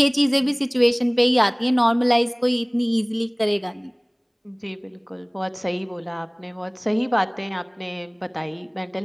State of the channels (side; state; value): both; identical; correlation 1.00